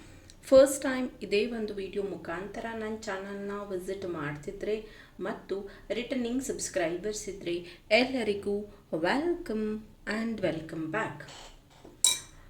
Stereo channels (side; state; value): both; identical; correlation 1.00